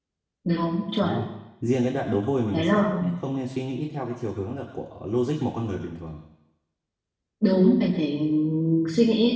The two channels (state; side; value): identical; both; correlation 1.00